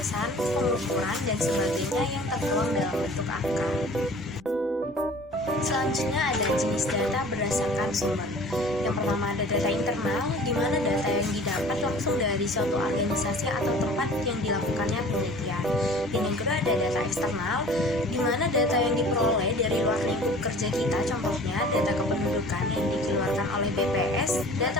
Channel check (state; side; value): normal; both; correlation 0.46